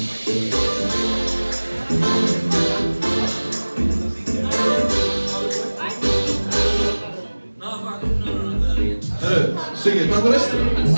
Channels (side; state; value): both; inverted; correlation -1.00